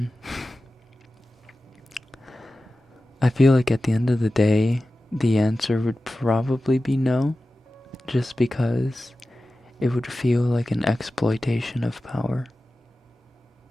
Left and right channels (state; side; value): normal; both; correlation 0.95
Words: I feel like at the end of the day, the answer would probably be no, just because it would feel like an exploitation of power.